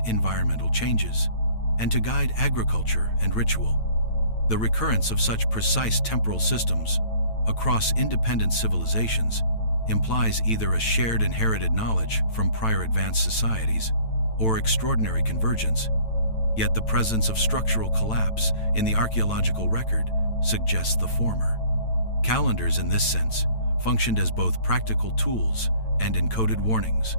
environmental changes, and to guide agriculture and ritual. The recurrence of such precise temporal systems across independent civilizations implies either a shared inherited knowledge from prior advanced societies or extraordinary convergence, yet the presence of structural collapse in the archaeological record suggests the former. Calendars, in this sense, functioned as both practical tools and encoded warnings,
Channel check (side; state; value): right; late; 9.0 ms